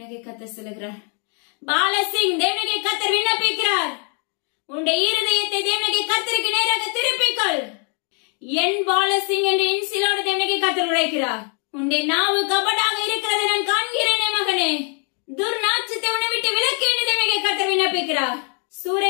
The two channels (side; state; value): right; quieter; 39.2 dB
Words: கர்த்தர் சொல்லுகிறார், பாலசிங் தேவனாகிய கர்த்தர் விண்ணப்பிக்கிறார், உன்னுடைய இருதயத்தை தேவனாகிய கர்த்தருக்கு நேராக திருப்பிக்கொள். என் பாலசிங் என்று இன்சிலோடு தேவனாகிய கர்த்தர் உரைக்கிறார். உன்னுடைய நாவு கபடாக இருக்கிறதை நான் காண்கிறேனே மகனே, துர்நாற்றத்தை உன்னை விட்டு விலக்கு என்று தேவனாகிய கர்த்தர் விண்ணப்பிக்கிறார்.